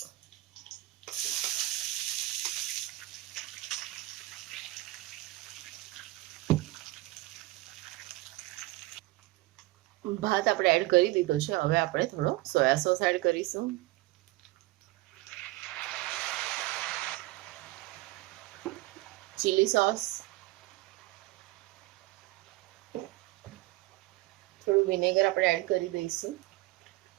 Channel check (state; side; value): quieter; left; 19.8 dB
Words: ભાત આપણે એડ કરી દીધો છે. હવે આપણે થોડો સોયા સોસ એડ કરીશું. ચીલી સોસ, થોડું વિનેગર આપણે એડ કરી દઈશું.